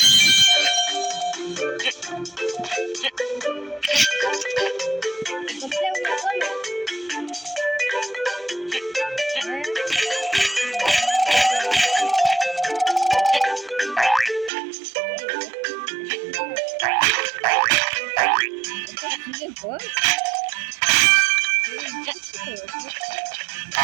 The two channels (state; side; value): drops out; left; at 14.5 s